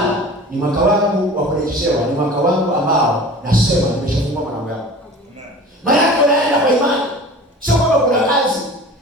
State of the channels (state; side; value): normal; both; correlation 0.40